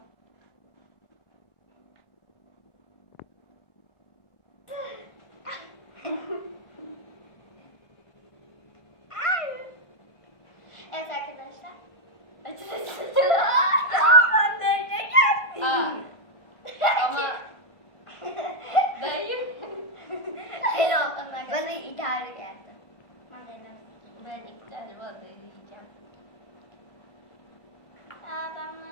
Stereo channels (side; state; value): right; late; 1.6 ms